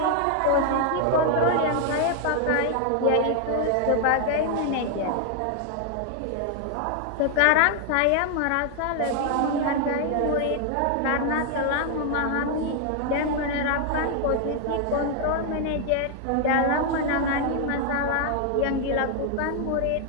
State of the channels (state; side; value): different; both; correlation 0.00